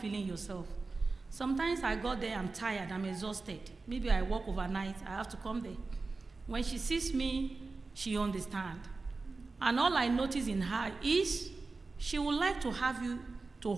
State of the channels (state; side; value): quieter; left; 3.8 dB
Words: yourself. Sometimes I got there, I'm tired, I'm exhausted. Maybe I work overnight, I have to come there. When she sees me, she understands. And all I notice in her is she would like to have you to